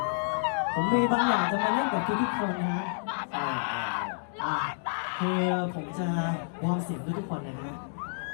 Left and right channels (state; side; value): silent; right; digital silence